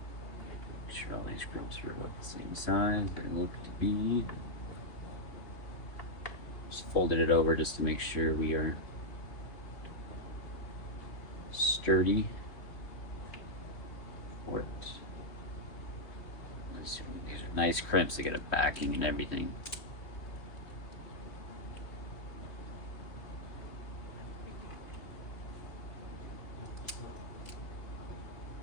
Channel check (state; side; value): late; right; 2.7 ms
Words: Make sure all these crimps are about the same size they look to be. Just folded it over just to make sure we are sturdy for it. These are nice crimps to get a backing and everything.